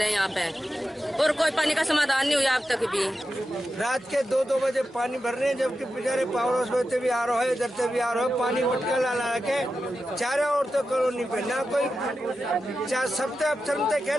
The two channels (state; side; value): normal; both; correlation 0.91